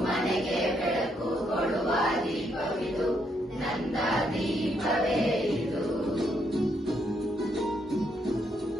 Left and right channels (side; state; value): both; normal; correlation 0.75